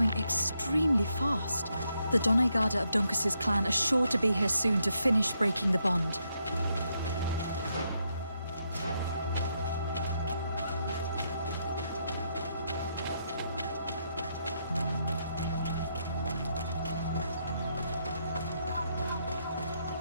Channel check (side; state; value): both; inverted; correlation -0.79